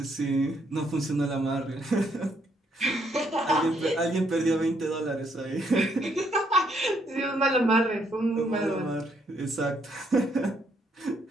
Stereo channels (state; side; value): normal; both; correlation 0.72